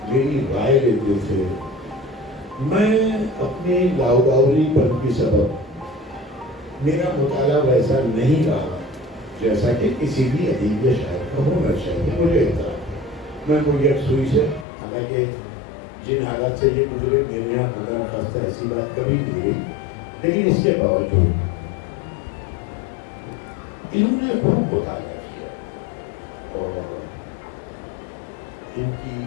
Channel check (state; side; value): drops out; right; at 14.7 s